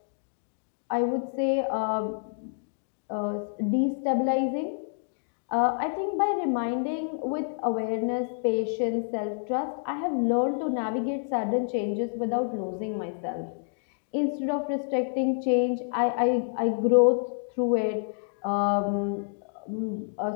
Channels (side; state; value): right; silent; digital silence